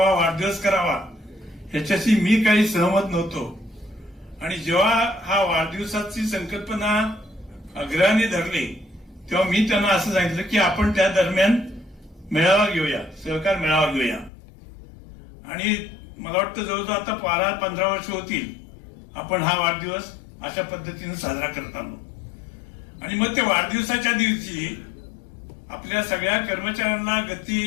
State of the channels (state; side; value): drops out; right; at 14.3 s